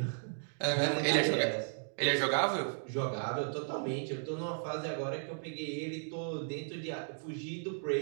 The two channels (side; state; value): left; silent; digital silence